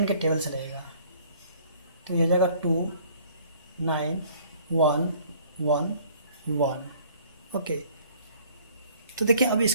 के टेबल से लगेगा, तो ये हो जाएगा 2 9 1 1 1। ओके, तो देखिए अब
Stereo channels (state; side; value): inverted; both; correlation -0.57